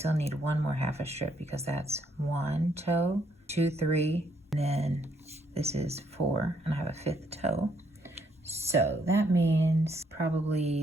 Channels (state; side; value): normal; both; correlation 0.71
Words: need 1 more half a strip because that's 1 toe, 2, 3, and then this is 4, and I have a 5th toe. So that means